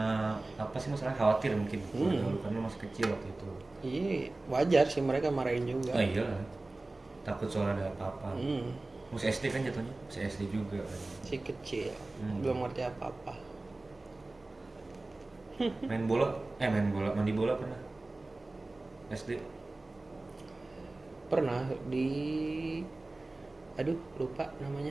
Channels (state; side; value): quieter; left; 3.0 dB